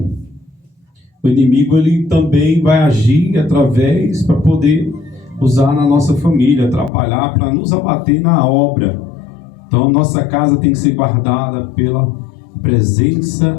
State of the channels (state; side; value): drops out; right; at 6.9 s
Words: o inimigo ele também vai agir através para poder usar na nossa família, atrapalhar para nos abater na obra. Então nossa casa tem que ser guardada pela presença